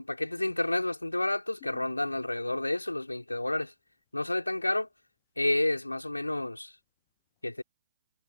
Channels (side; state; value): both; inverted; correlation -1.00